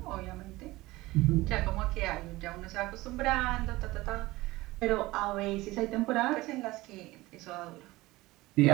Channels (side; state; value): left; quieter; 19.5 dB